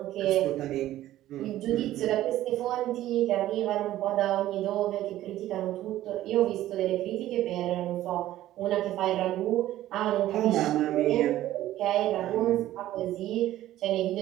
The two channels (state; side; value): quieter; left; 14.1 dB